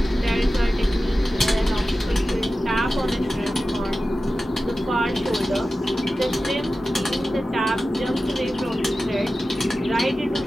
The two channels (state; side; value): normal; both; correlation 0.94